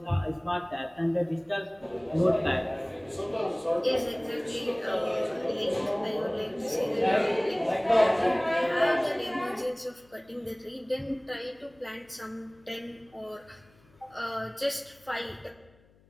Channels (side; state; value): left; noise; hum, 30 dB below the sound